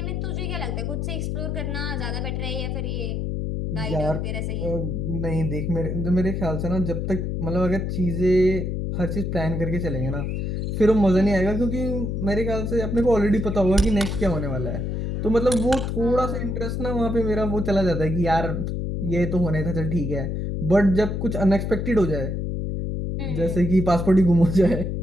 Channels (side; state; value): left; noise; hum, 2 dB below the sound